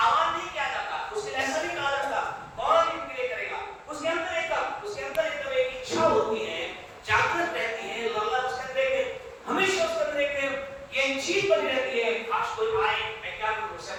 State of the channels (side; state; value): both; identical; correlation 1.00